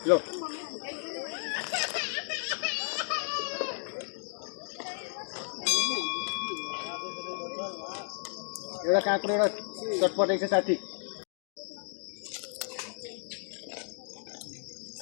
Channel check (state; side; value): silent; right; digital silence